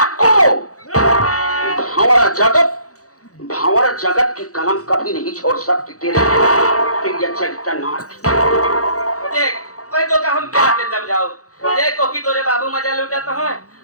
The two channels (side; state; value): right; late; 0.66 ms